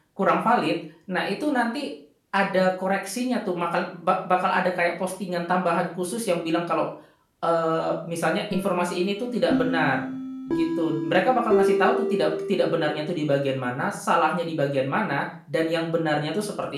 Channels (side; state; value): both; identical; correlation 1.00